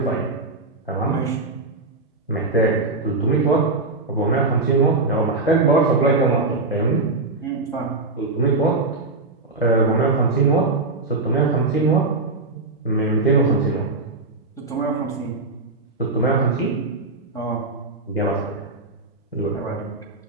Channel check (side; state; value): left; quieter; 3.4 dB